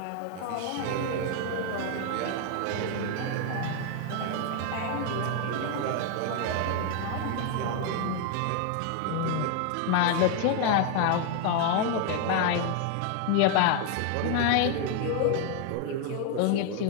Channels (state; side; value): different; both; correlation 0.01